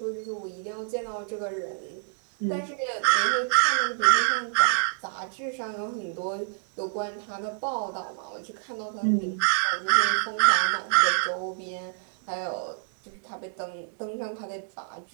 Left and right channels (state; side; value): silent; left; digital silence